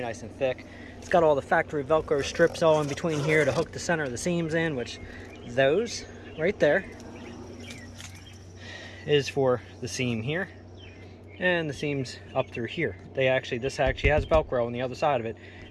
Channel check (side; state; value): both; identical; correlation 1.00